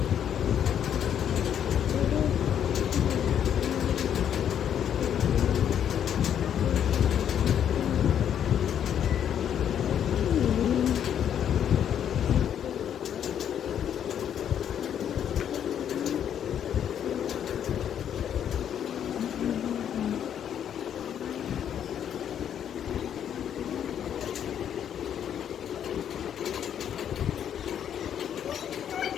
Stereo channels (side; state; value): right; quieter; 9.3 dB